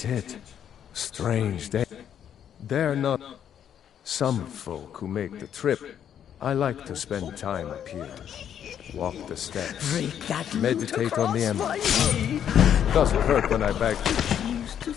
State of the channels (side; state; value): right; quieter; 9.3 dB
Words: Strange day. They're not some folk who make the trip. I like to spend time up here. Walk the steps. Meditate on the emerald. Doesn't hurt when I beg. Used to